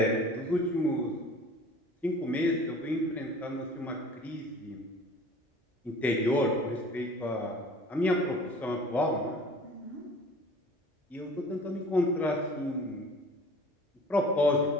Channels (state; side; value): normal; both; correlation 0.45